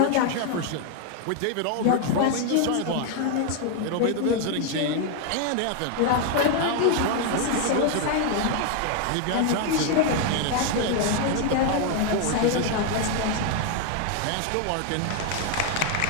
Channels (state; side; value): different; both; correlation 0.00